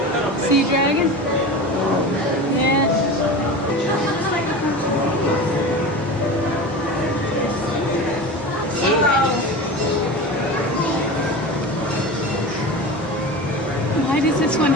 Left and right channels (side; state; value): both; normal; correlation 0.30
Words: Sea dragon? Yeah. Why does this one